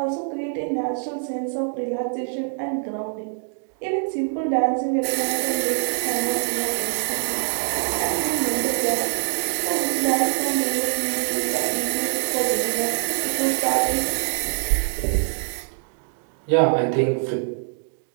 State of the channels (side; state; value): left; silent; digital silence